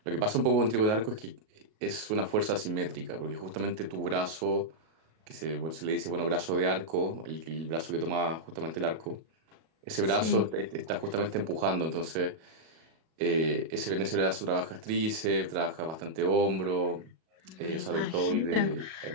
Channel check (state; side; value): late; left; 37 ms